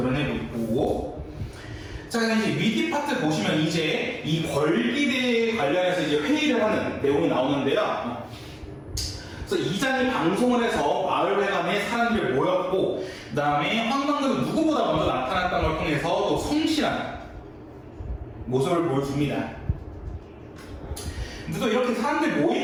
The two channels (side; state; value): both; identical; correlation 1.00